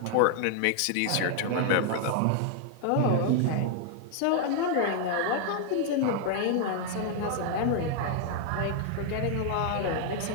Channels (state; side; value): different; both; correlation 0.00